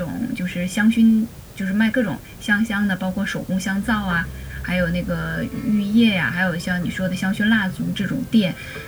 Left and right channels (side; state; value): both; identical; correlation 1.00